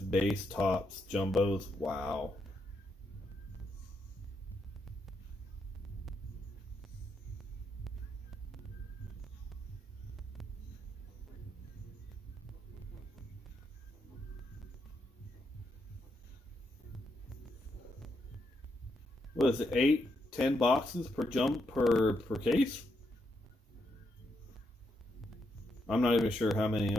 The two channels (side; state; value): both; normal; correlation 0.80